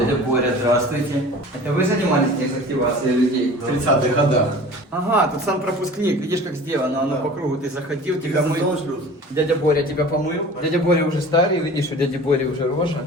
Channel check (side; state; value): both; normal; correlation 0.41